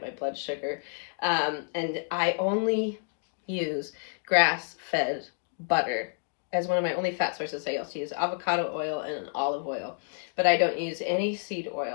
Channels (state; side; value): silent; right; digital silence